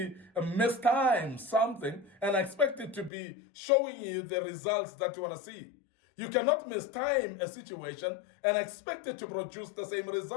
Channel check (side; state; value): right; drops out; at 3.1 s